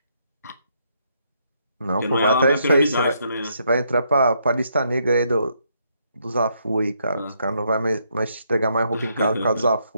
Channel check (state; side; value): inverted; both; correlation -0.75